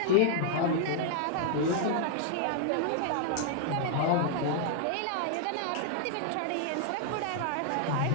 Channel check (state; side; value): different; both; correlation -0.01